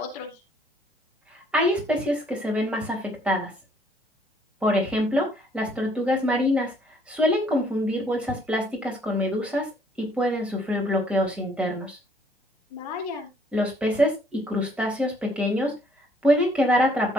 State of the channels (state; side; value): normal; both; correlation 0.64